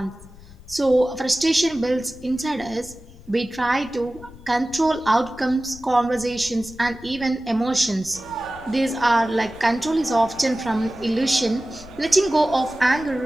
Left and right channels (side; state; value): left; noise; rumble, 20 dB below the sound